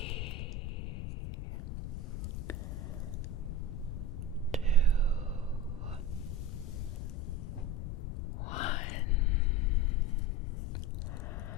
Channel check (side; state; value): left; noise; rumble, 4 dB below the sound